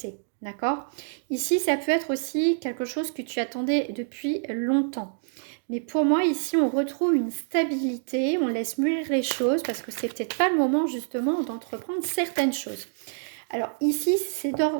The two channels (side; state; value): left; silent; digital silence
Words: D'accord? Ici, ça peut être aussi quelque chose que tu attendais depuis longtemps. Mais pour moi, ici, on retrouve une stabilité, on laisse mûrir les choses parce que c'est peut-être pas le moment justement d'entreprendre certaines choses. Alors ici, c'est